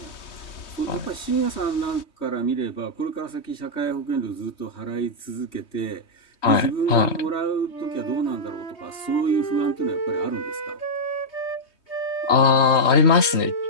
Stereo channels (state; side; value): late; right; 3.2 ms